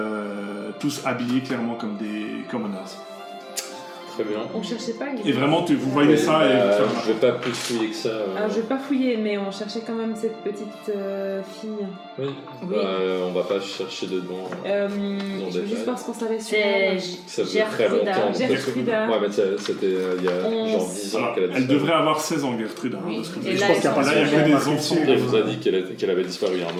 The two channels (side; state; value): both; identical; correlation 1.00